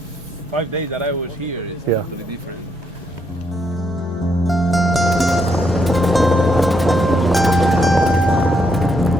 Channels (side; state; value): both; normal; correlation 0.76